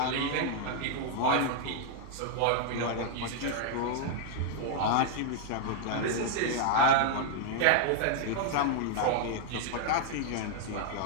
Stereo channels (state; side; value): different; both; correlation 0.00